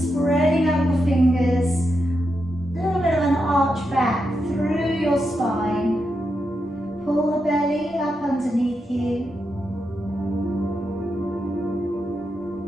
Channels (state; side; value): normal; both; correlation 0.85